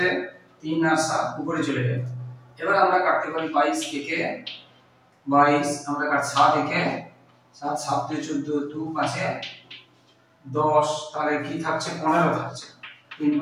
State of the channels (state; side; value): identical; both; correlation 1.00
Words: 3 আর 7 উপরে চলে যাবে। এবার আমরা কাটতে পারি 22 একে 22, আমরা কাট 7 একে 7, 7 দিয়ে 14, 2 5 এ 10, তাহলে কি থাকছে? 15 থাকছে। 3